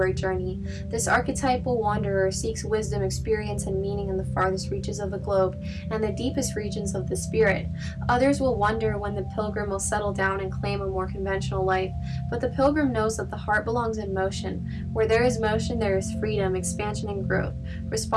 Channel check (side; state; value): both; identical; correlation 1.00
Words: journey. This archetypal wanderer seeks wisdom, experience, and meaning in the farthest reaches of the globe and the deepest regions of the spirit. Others will wonder when the Pilgrim will settle down and claim a more conventional life, but the Pilgrim knows that the heart belongs in motion. Where there is motion, there is freedom, expansion, and growth.